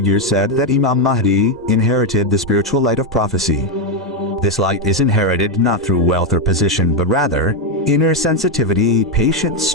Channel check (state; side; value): normal; both; correlation 0.05